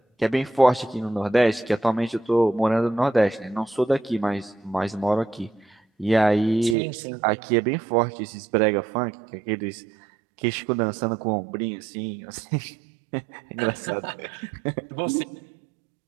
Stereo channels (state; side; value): drops out; left; at 6.8 s